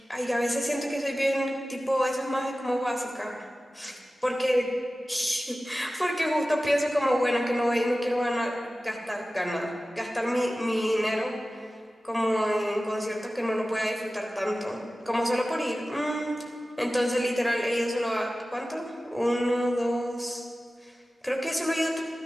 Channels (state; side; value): normal; both; correlation 0.96